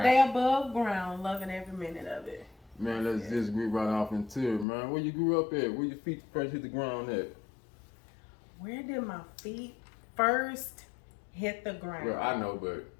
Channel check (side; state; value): right; drops out; at 4.7 s